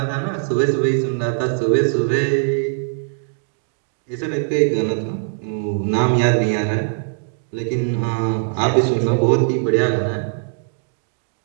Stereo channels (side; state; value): left; silent; digital silence